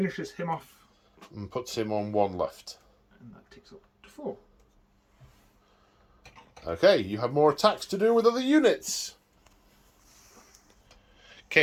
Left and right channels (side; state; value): both; identical; correlation 1.00